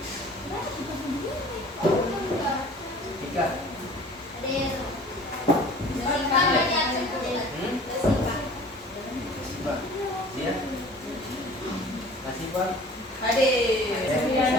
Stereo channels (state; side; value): normal; both; correlation 0.46